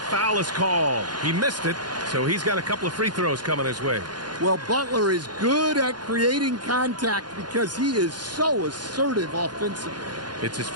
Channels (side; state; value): left; late; 0.70 ms